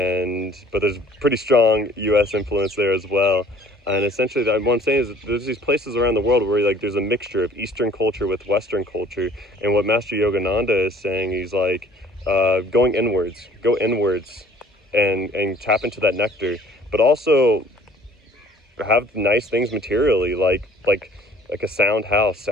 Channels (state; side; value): normal; both; correlation 0.54